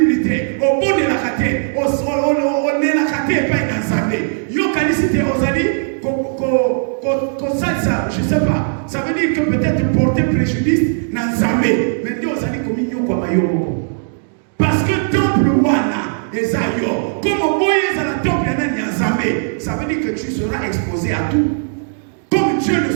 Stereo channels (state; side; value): silent; left; digital silence